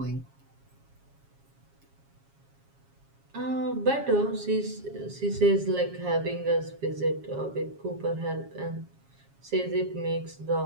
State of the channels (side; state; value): left; late; 7.3 ms